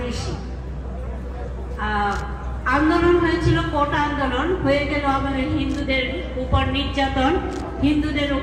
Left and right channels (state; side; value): identical; both; correlation 1.00